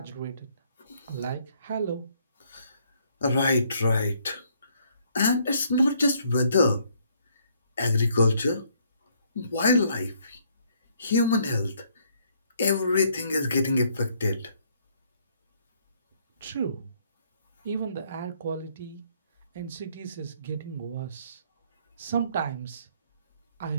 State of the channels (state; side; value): inverted; both; correlation -0.68